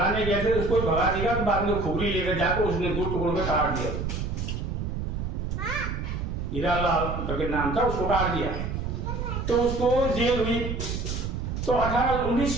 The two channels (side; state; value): right; noise; rumble, 3 dB below the sound